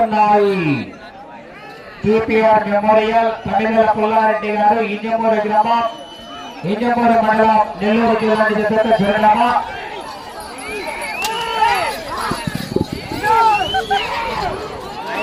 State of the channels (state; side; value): identical; both; correlation 1.00